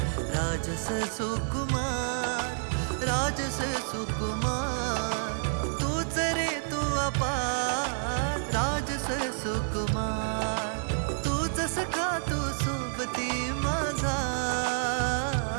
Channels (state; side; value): silent; left; digital silence